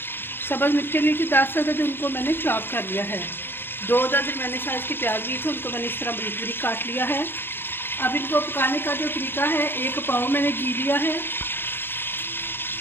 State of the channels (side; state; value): right; late; 0.10 ms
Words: सब्ज़ मिर्ची 10 अदद उनको मैंने चॉप कर लिया है। 2 दरमियाने साइज के प्याज लिए थे, उनको मैंने इस तरह बारीक बारीक काट लिया है। अब इनको पकाने का जो तरीका है, 1 पाव मैंने घी लिया है।